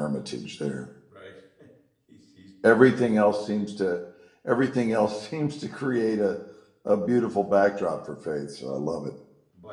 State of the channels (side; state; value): both; identical; correlation 1.00